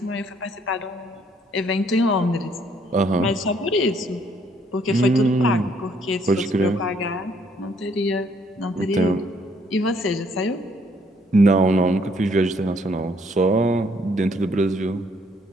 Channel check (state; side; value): normal; both; correlation 0.67